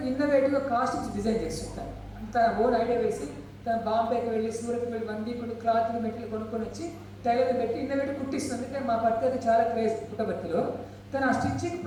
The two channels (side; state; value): both; identical; correlation 1.00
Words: ఇన్నోవేటివ్గా కాస్ట్యూమ్స్ డిజైన్ చేస్తుంటాను. తన ఓన్ ఐడియా వేసి తను బాంబేకి వెళ్ళి, సూరత్కి వెళ్ళి 1 week క్లాత్లు మెటీరియల్ కొనుక్కొని వచ్చి టైలర్ పెట్టి ఇన్నోవేటివ్ కుట్టిస్తుంది. అంటే మా పర్యాటన చాలా క్రేజ్ పుట్టబర్తిలో. తను ఆ స్టిచ్చింగ్